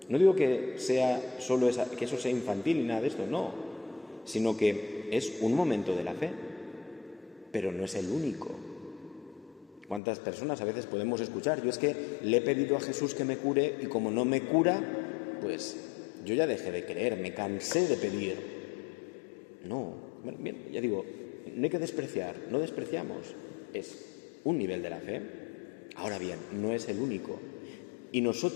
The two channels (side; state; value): right; drops out; at 10.0 s